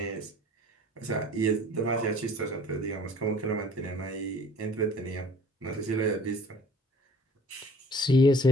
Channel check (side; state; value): both; normal; correlation 0.50